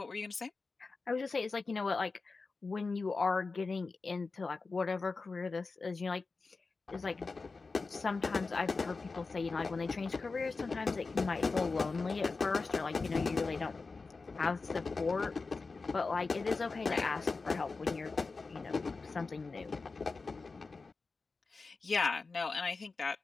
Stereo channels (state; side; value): quieter; right; 4.1 dB